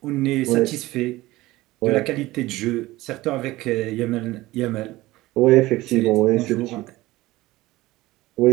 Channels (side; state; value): left; quieter; 18.4 dB